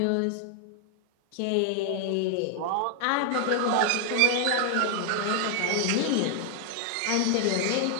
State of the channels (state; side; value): different; both; correlation 0.00